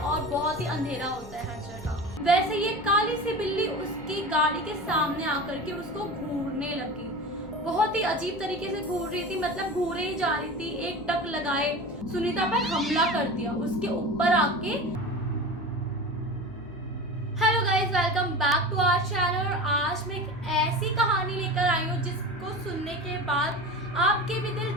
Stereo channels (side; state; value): left; noise; hum, 20 dB below the sound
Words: बहुत ही अंधेरा होता है हर जगह। वैसे ये काली सी बिल्ली उसकी गाड़ी के सामने आकर के उसको घूरने लगी। बहुत ही अजीब तरीके से घूर रही थी, मतलब घूरे ही जा रही थी। एक टक लगाए सुनीता पर हमला कर दिया उसके ऊपर आके। Hello guys, welcome back to our channel. और आज मैं एक ऐसी कहानी लेकर आई हूँ जिसको सुनने के बाद आपके भी दिल